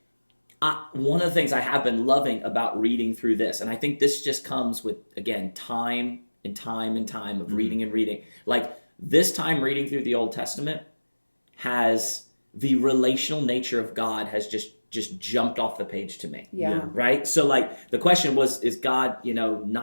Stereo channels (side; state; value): both; inverted; correlation -1.00